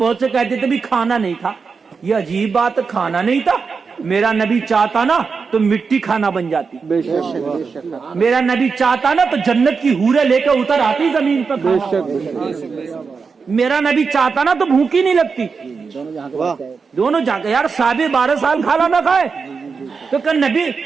سے کہتے تھے بھی کھانا نہیں تھا, یہ عجیب بات, کھانا نہیں تھا. میرا نبی چاہتا نا تو مٹی کھانا بن جاتی. میرا نبی چاہتا نا تو جنت کی حوریں لے کے اتر آتی زمین پر. میرا نبی چاہتا نا تو بھوک ہی نہیں لگتی. دونوں جا کے یار, صحابی 12 سال کھانا نہ کھائے تو کہ نبی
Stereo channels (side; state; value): left; quieter; 5.2 dB